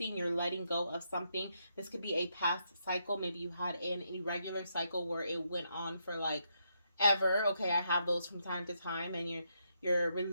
you're letting go of something. This could be a past cycle. Maybe you had an irregular cycle where it went on for like ever. Okay, I have those from time to time, and you're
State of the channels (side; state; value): both; inverted; correlation -0.79